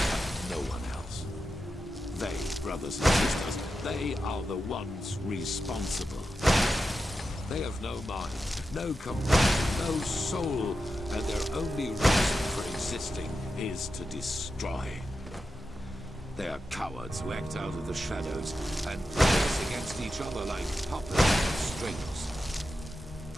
no one else. They, brothers and sisters, they are the ones responsible. They have no mind, no compassion, no soul, and their only reason for existing is to destroy. They are cowards who act out of the shadows and play us against each other like puppets on strings.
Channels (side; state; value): both; normal; correlation 0.90